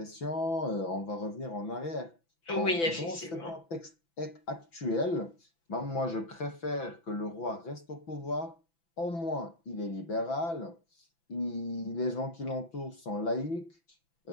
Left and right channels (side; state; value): right; late; 6.0 ms